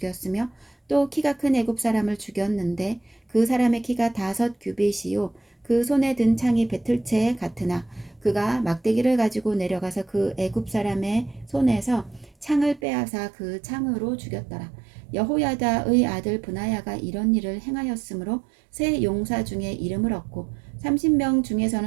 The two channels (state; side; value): drops out; left; at 12.8 s